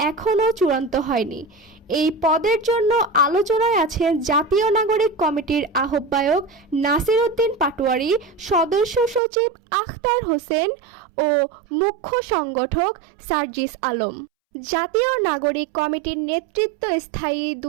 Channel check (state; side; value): drops out; left; at 9.2 s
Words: এখনও চূড়ান্ত হয়নি। এই পদের জন্য আলোচনায় আছেন জাতীয় নাগরিক কমিটির আহ্বায়ক নাসির উদ্দিন পাটোয়ারি, সদস্য সচিব আখতার হোসেন ও মুখ্য সংগঠক সার্জিস আলম। জাতীয় নাগরিক কমিটির নেতৃত্ব স্থায়ী